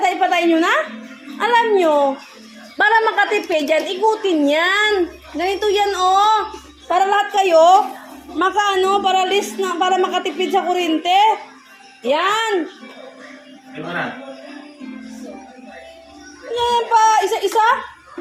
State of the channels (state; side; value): identical; both; correlation 1.00